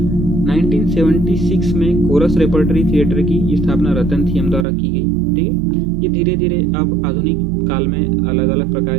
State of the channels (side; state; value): left; drops out; at 4.7 s